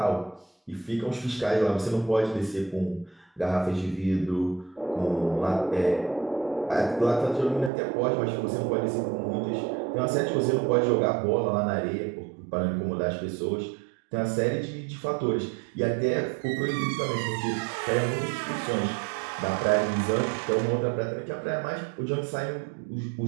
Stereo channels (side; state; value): left; drops out; at 7.7 s